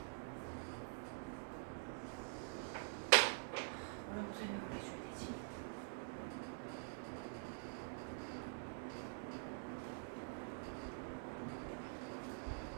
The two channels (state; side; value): silent; left; digital silence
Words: 뭐라고 설명을 해줘야 되지?